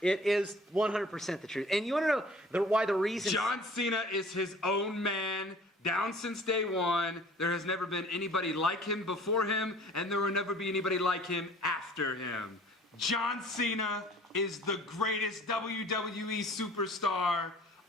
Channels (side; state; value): both; normal; correlation 0.49